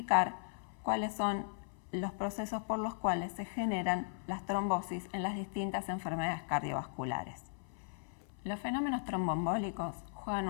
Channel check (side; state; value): right; silent; 53 dB below the other